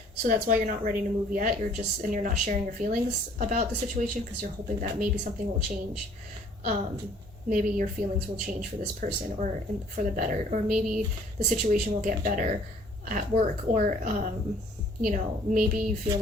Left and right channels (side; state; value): both; normal; correlation 0.57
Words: So that's why you're not ready to move yet. You're not sharing your feelings about the situation, because you're hoping that maybe something will change. Maybe your feelings will change for this person, or for the better, or maybe the situation will get better at work, or maybe you feel